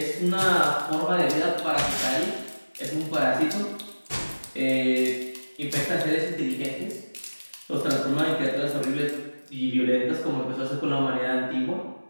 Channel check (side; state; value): both; inverted; correlation -1.00